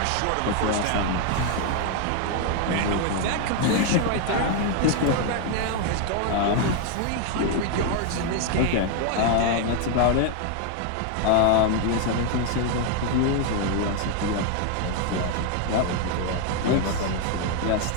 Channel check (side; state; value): both; different; correlation 0.00